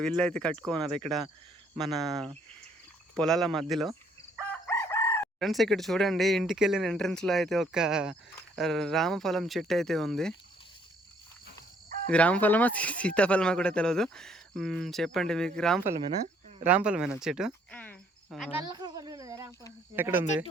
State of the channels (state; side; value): normal; both; correlation 0.65